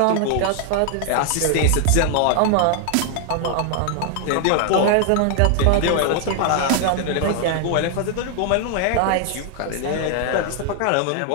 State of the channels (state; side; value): different; both; correlation 0.00